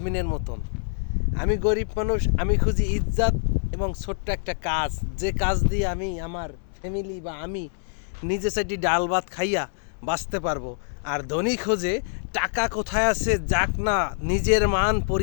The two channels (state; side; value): silent; right; 62 dB below the other